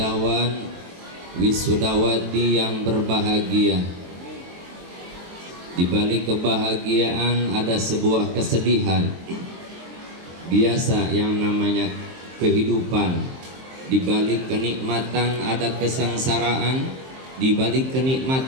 wisudawati yang berbahagia. Di balik kebahagiaan ada sebuah kesedihan. Biasa yang namanya kehidupan. Di balik kenikmatan ada kesengsaraan, di balik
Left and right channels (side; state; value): left; late; 23 ms